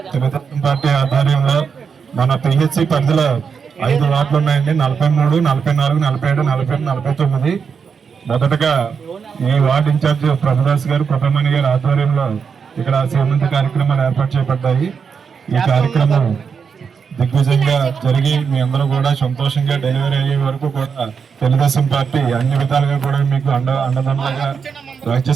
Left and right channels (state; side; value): quieter; left; 6.2 dB